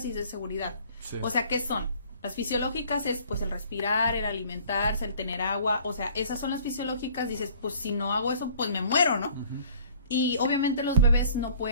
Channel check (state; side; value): inverted; both; correlation -0.54